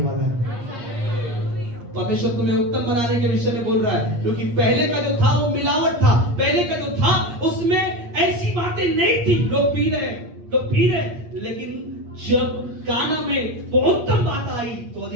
वाला है। परमेश्वर तुम्हें उत्तम बनाने के विषय में बोल रहा है, क्योंकि पहले का जो था वो मिलावट था, पहले का जो था उसमें ऐसी बातें नहीं थी। लोग पी रहे, लेकिन जब गाना में वो उत्तम बात आई तो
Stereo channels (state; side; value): late; left; 8.5 ms